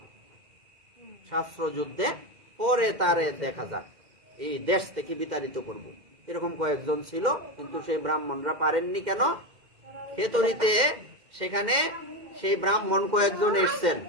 শাস্ত্র যুদ্ধে, পরে তারে দেখা যাক, এই দেশ থেকে বিতাড়িত করব। এরকম কয়েকজন ছিল, কিন্তু সেই ব্রাহ্মণরা পারেননি। কেন? খেতরিতে সেখানে সেই ব্রাহ্মণ কয়েকজন এসছেন,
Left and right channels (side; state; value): left; late; 2.1 ms